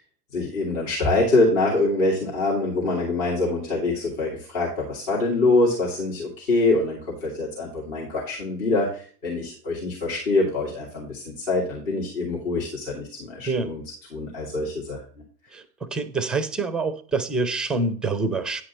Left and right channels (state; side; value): normal; both; correlation 0.45